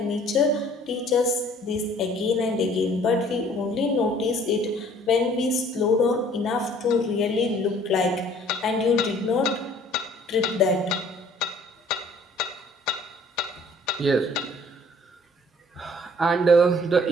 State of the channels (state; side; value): normal; both; correlation 0.55